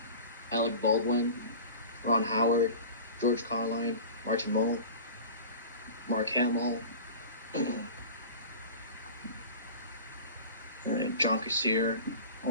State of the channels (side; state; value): both; inverted; correlation -0.37